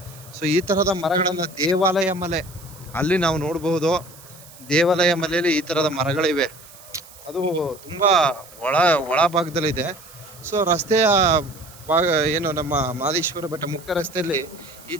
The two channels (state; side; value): noise; right; hiss, 21 dB below the sound